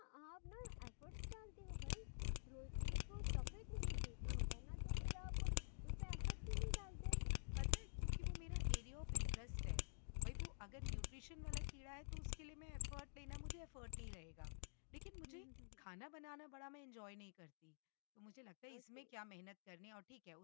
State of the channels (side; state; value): right; silent; digital silence